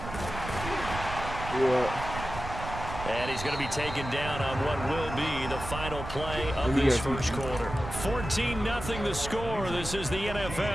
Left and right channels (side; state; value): right; noise; rumble, 8 dB below the sound